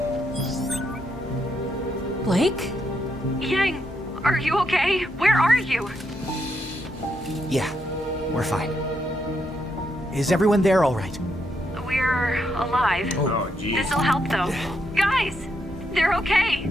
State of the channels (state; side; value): normal; both; correlation 0.79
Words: Blake? Yang, are you okay? Where are you? Yeah, we're fine. Is everyone there all right? We're alive. Oh, geez. This'll help, though. Guys, they're okay.